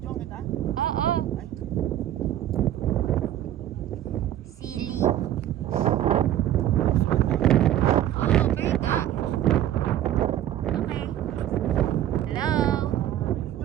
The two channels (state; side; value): quieter; left; 12.2 dB